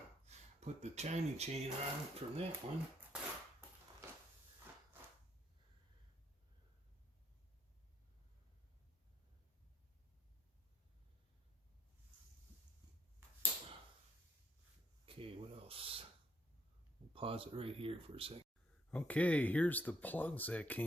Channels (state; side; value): normal; both; correlation 0.73